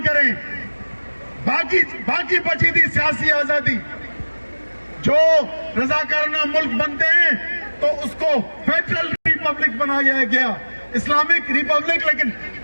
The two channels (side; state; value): both; inverted; correlation -1.00